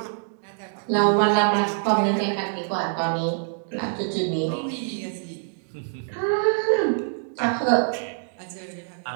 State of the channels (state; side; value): silent; left; digital silence